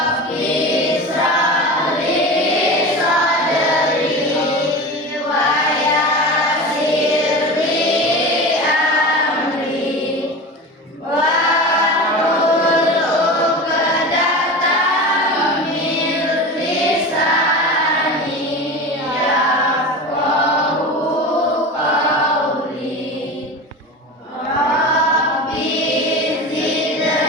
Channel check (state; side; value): normal; both; correlation 0.29